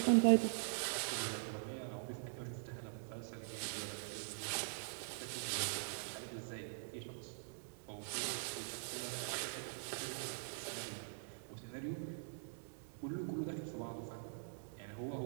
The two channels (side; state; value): left; silent; digital silence